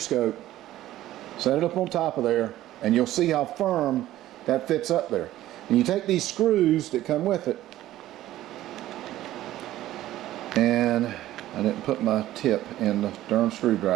set it up on top of there, and you'll see how firm that fits up there. And you take these screws that come with it, and I didn't put my tip in the darn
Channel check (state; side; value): quieter; left; 14.3 dB